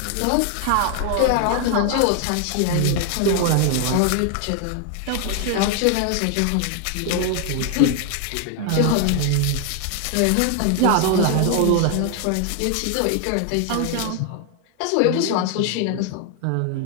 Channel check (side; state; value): both; different; correlation 0.00